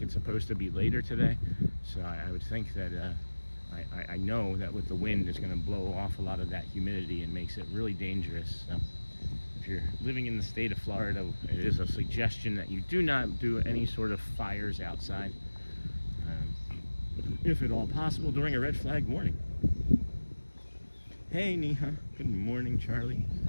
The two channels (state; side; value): inverted; both; correlation -1.00